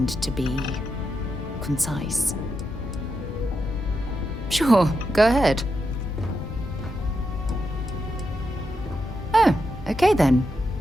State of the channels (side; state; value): both; normal; correlation 0.85